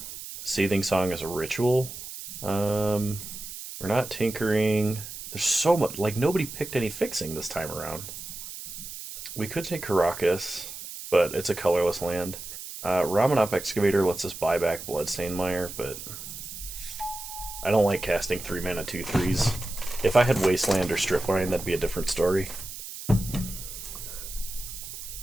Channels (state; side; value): noise; right; hiss, 10 dB below the sound